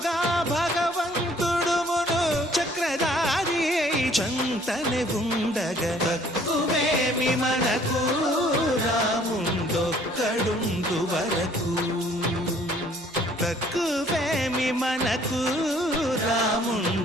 భగవంతుడుమును చక్రధారి చంతనే ఉండగా తక్కువేమి మనకు రాముండొక్కడుండు వరకు తక్కువేమి మనకు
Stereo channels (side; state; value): both; normal; correlation 0.58